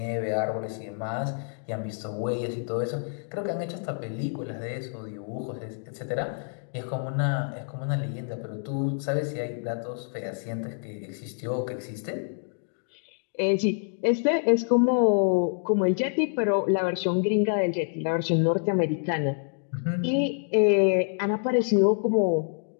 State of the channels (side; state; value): right; silent; 60 dB below the other